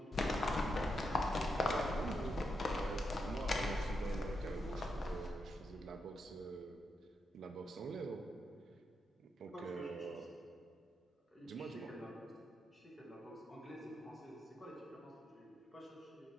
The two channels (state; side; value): normal; both; correlation 0.84